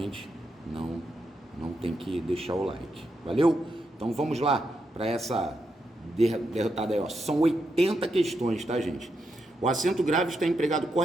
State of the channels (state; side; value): normal; both; correlation 0.83